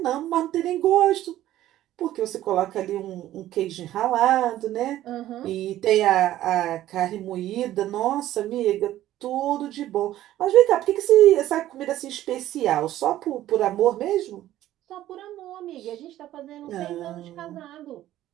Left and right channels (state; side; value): quieter; left; 13.7 dB